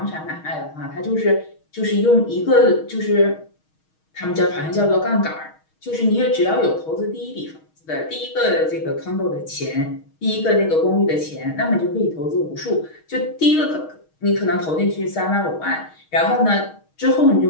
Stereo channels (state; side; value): late; right; 6.4 ms